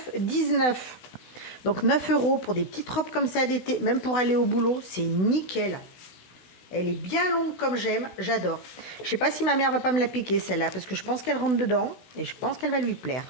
9,19. Donc 9 € pour des petites robes comme ça d'été, même pour aller au boulot, c'est nickel. Elle est bien longue comme j'aime, j'adore. Je sais pas si ma mère va pas me la piquer celle-là, parce que je pense qu'elle rentre dedans et je pense qu'elle va lui plaire.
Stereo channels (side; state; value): right; late; 16 ms